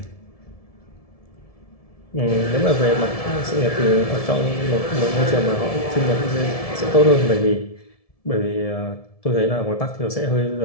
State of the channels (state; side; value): late; right; 1.7 ms